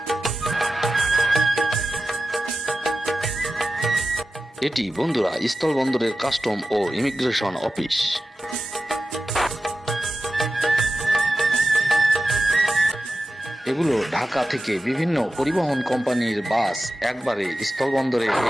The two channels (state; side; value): normal; both; correlation 0.93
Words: এটি বন্ধুরা স্থলবন্দরের কাস্টম ও ইমিগ্রেশন অফিস। এগুলো ঢাকা থেকে বিভিন্ন পরিবহন কোম্পানির বাস একবারে স্থলবন্দরে